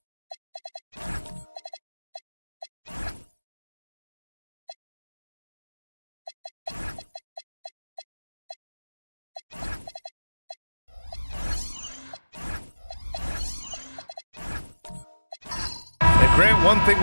Grant, one thing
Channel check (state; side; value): inverted; both; correlation -1.00